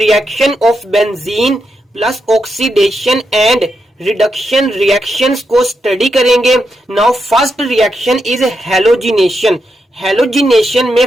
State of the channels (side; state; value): both; normal; correlation 0.84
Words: of benzene plus oxidation and reduction reactions को study करेंगे। Now first reaction is halogenation. Halogenation में